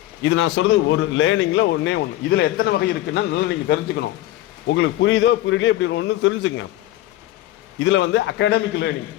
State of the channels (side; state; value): right; quieter; 15.1 dB